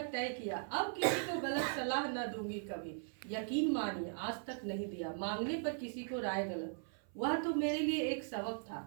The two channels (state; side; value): silent; left; 52 dB below the other